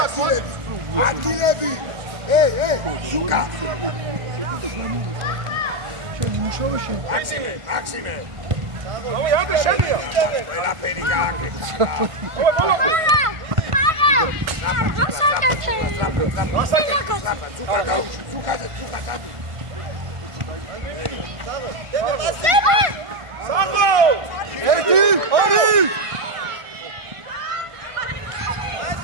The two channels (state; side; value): late; left; 1.5 ms